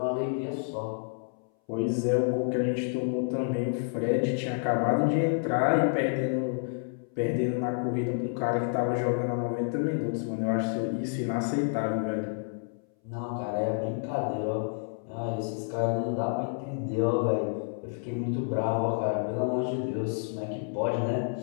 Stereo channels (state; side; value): silent; right; 58 dB below the other